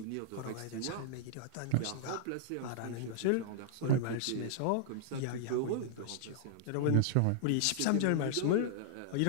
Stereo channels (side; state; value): both; different; correlation -0.01